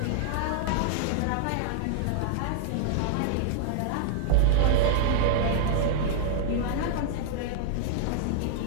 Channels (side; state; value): both; different; correlation -0.01